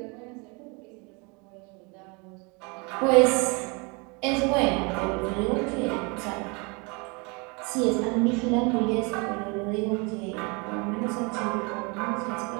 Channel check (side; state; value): left; quieter; 30.7 dB